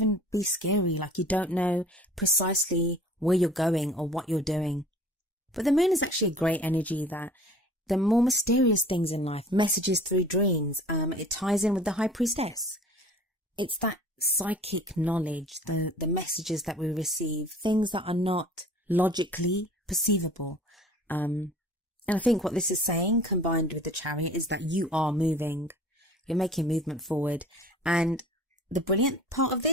be scary, like you don't know precisely where you're going or what you're doing. But the moon is actually a great energy that the more mysterious things in life, messages through dreams, it ties in with the High Priestess. It's that psychic knowledge, the messages that we receive, things that are not logically perceivable. And I think what this is saying, combined with the Chariot, is that you are moving. You're making movement forward. And the brilliant part of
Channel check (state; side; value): normal; both; correlation 0.46